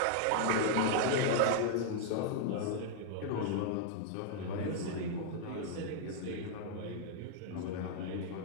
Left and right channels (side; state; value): both; different; correlation -0.01